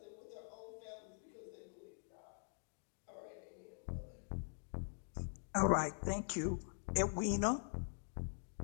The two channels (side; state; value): right; silent; digital silence